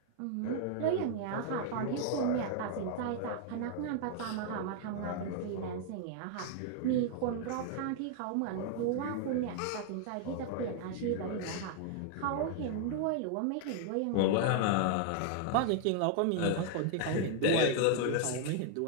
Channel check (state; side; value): different; both; correlation 0.00